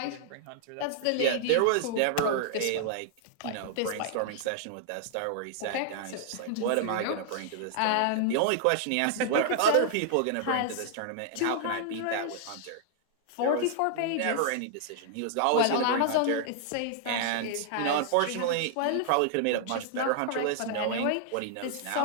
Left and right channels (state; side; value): different; both; correlation -0.01